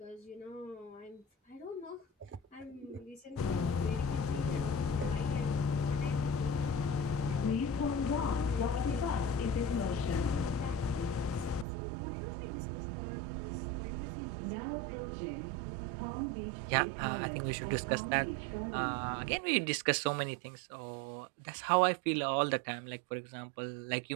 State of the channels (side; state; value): left; drops out; at 11.7 s